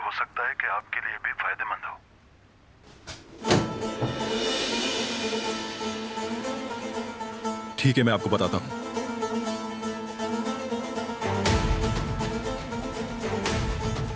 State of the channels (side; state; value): both; identical; correlation 1.00